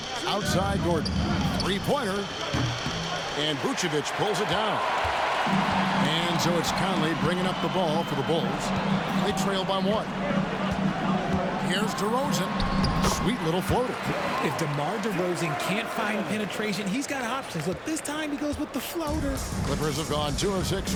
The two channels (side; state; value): both; identical; correlation 1.00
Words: Outside Gordon. Three-pointer. And Vucevic pulls it down. And so it's Conley bringing up the ball for the Bulls. They trail by 1. Here's DeRozan. Sweet little floater. If DeMar DeRozan can't find penetration, he's got options. Look, this time he goes with the floater. Clippers have gone 2 of 6